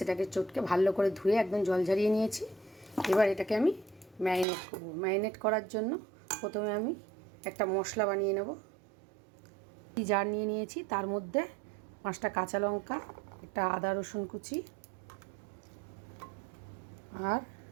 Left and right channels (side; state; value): left; drops out; at 4.5 s